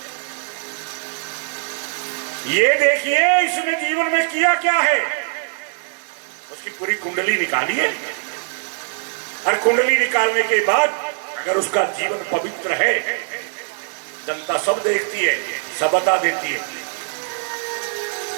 ये देखिए इसने जीवन में किया क्या है, उसकी पूरी कुंडली निकाली है, और कुंडली निकालने के बाद अगर उसका जीवन पवित्र है, जनता सब देखती है, सब बता देती है।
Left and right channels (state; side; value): silent; left; digital silence